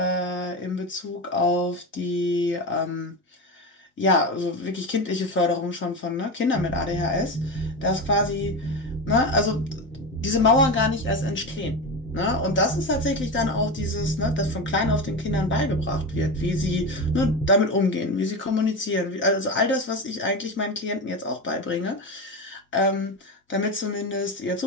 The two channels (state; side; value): normal; both; correlation 0.20